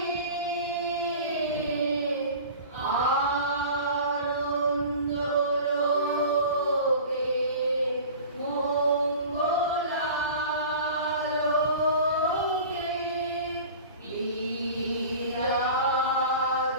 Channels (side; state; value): both; inverted; correlation -0.39